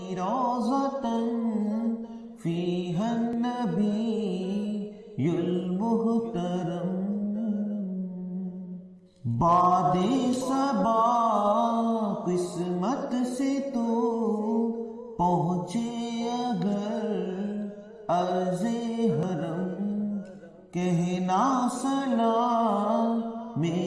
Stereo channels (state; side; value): identical; both; correlation 1.00